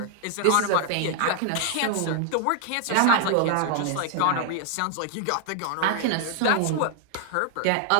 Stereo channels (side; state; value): both; different; correlation 0.00